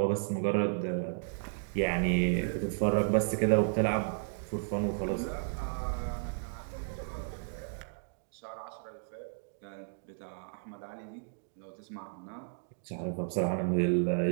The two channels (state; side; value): silent; left; digital silence